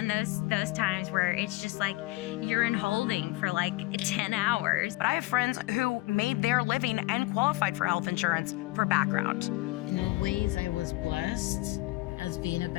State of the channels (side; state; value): right; quieter; 20.8 dB